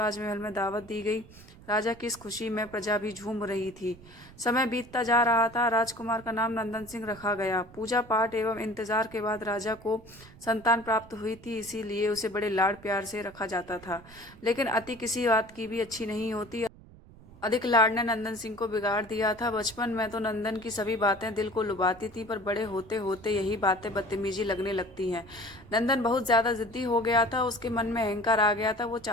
में दावत दी गई। राजा की इस खुशी में प्रजा भी झूम रही थी। समय बीतता जा रहा था। राजकुमार का नाम नंदन सिंह रखा गया। पूजा पाठ एवं इंतजार के बाद राजा को संतान प्राप्त हुई थी, इसीलिए उसे बड़े लाड प्यार से रखा जाता था। लेकिन अति किसी बात की भी अच्छी नहीं होती। अधिक लाड ने नंदन सिंह को बिगाड़ दिया था। बचपन में तो नंदन की सभी बातें दिल को लुभाती थी, पर बड़े होते होते यही बातें बदतमीजी लगने लगती हैं। नंदन बहुत ज्यादा जिद्दी हो गया था। उसके मन में अहंकार आ गया था। वो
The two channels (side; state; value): right; noise; rumble, 21 dB below the sound